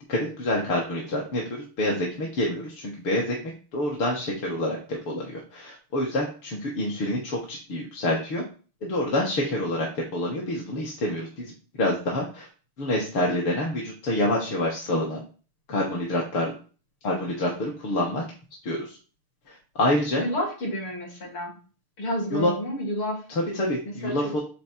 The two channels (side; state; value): right; late; 6.6 ms